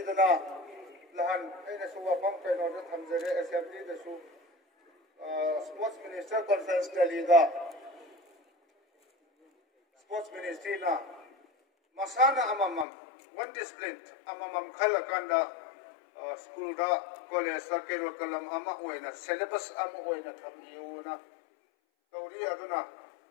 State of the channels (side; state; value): right; drops out; at 12.9 s